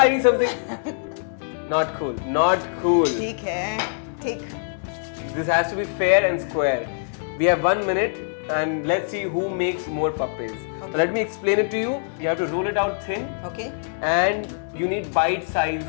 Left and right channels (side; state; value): right; silent; 63 dB below the other